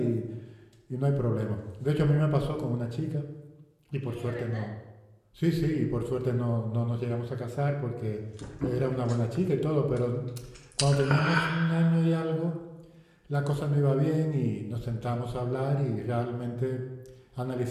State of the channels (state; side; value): identical; both; correlation 1.00